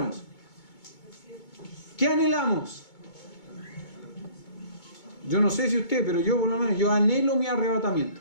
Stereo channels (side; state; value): right; late; 2.2 ms